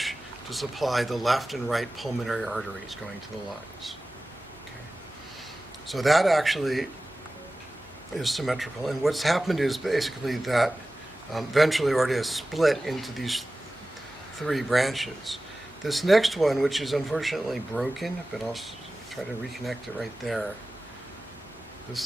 to supply the left and right pulmonary arteries going to the lungs. Okay. So that actually is symmetrical. And what's happened is basically that ventral aorta is split into these three branches. This next one, which is unfortunately broken, but I'll try to reconnect it right there.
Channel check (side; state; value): both; normal; correlation 0.96